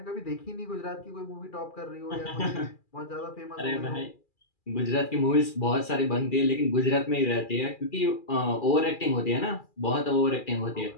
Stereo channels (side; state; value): right; late; 2.4 ms